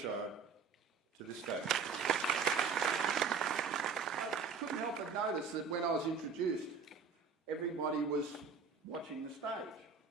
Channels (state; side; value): quieter; left; 5.4 dB